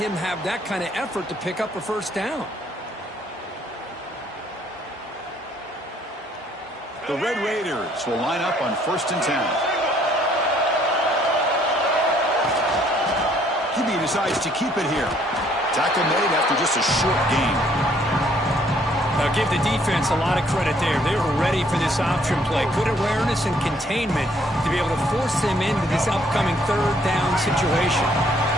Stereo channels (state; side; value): normal; both; correlation 0.64